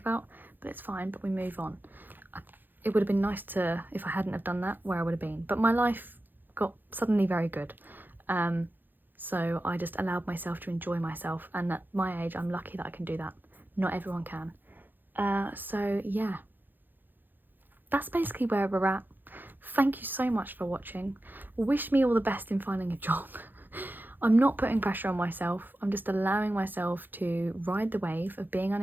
but it's fine, but we move on. It would have been nice to, if I hadn't have done that, where I would have been, but my life got suddenly very good, so I just allowed myself to enjoy myself, and at my age I'm lucky that I can do that. Not everyone can. So yeah, that's basically where we're at. Thank you so much for watching. Wish me all the best in finding a job. I'm not putting pressure on myself. I'm just allowing myself to ride the wave of being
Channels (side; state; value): left; late; 0.090 ms